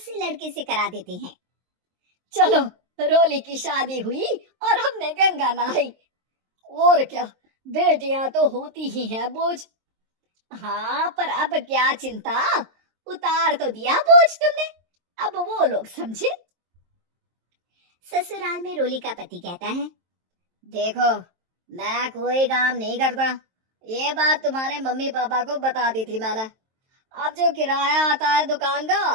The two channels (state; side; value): late; left; 23 ms